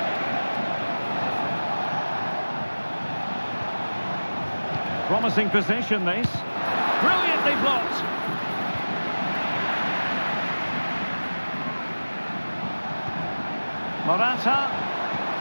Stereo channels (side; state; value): both; inverted; correlation -1.00